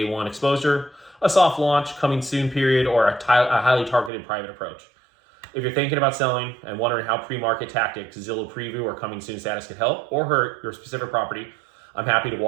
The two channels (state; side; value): drops out; left; at 4.1 s